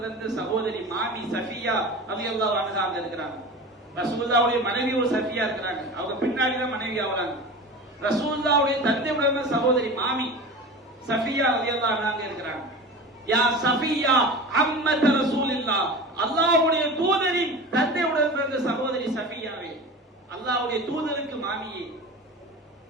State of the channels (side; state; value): both; normal; correlation 0.32